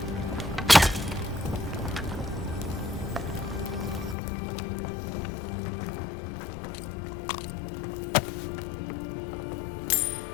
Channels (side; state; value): right; drops out; at 4.2 s